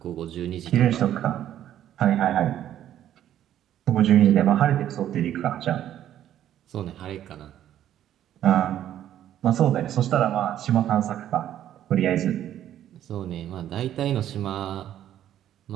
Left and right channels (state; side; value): quieter; left; 11.4 dB